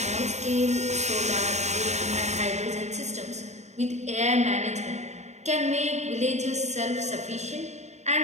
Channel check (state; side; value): late; left; 0.33 ms